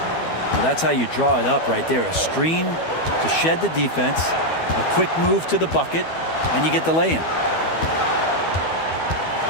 Well, that's how you draw it up right there. A screen to shed the defense, a quick move to the bucket, and you get the lay-in.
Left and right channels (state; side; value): late; right; 12 ms